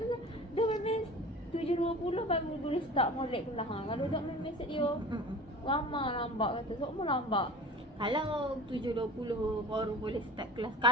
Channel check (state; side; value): normal; both; correlation 0.38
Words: tu dia memang 7.20 baru boleh start molek kelas. Kalau tak memang set dia lama lambat kata. Semua lambat. Kalau 7.20 baru boleh start kelas.